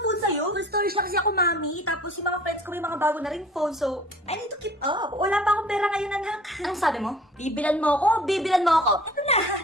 phone sa'yo? Full storage lang kasi ako, Mami. Tapos yung mga friends ko may mga bago na ring phone, so I need to keep up. Wala pa akong pera ngayon, anak. Anong sabi mo? Bibilan mo ako? Bibilan mo ako? Ito na,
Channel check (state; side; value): normal; both; correlation 0.48